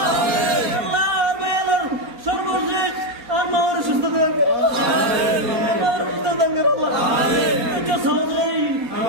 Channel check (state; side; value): late; left; 4.3 ms